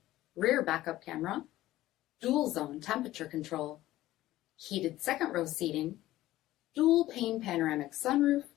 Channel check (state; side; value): quieter; right; 15.5 dB